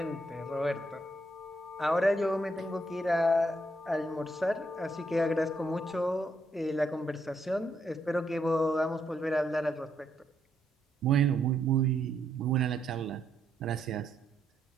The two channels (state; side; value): normal; both; correlation 0.76